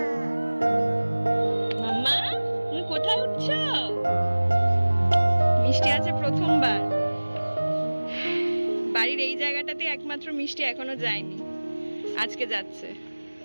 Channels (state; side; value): inverted; both; correlation -1.00